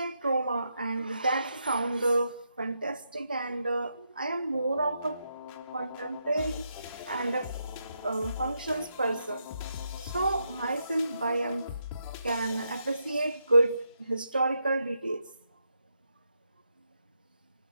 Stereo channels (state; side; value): inverted; both; correlation -0.82